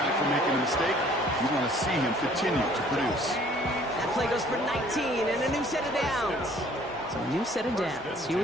for making a mistake. You want to see him continue to produce. That play goes for 19 and a new set of downs. So a new set of downs. Here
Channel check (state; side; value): normal; both; correlation 0.57